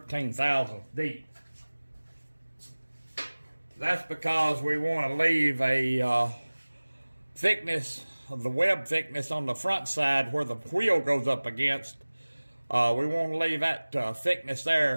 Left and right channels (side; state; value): both; inverted; correlation -1.00